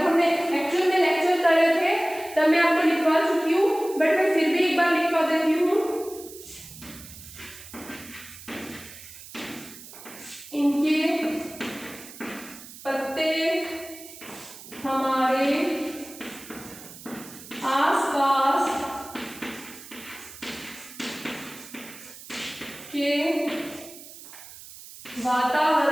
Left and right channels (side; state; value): right; noise; hiss, 16 dB below the sound